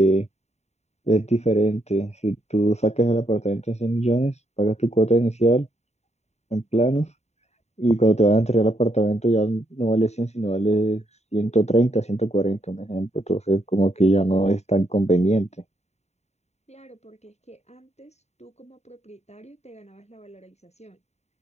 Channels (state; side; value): late; right; 0.32 ms